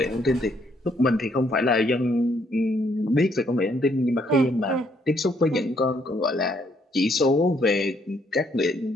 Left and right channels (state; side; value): normal; both; correlation 0.70